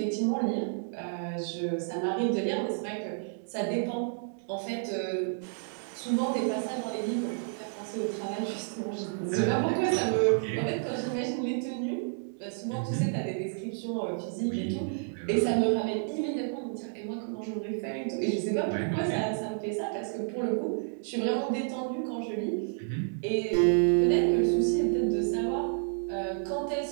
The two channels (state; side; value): silent; left; digital silence